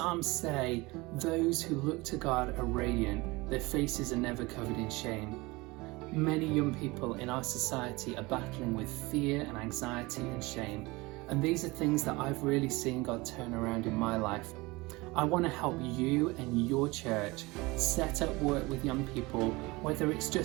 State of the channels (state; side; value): quieter; left; 23.0 dB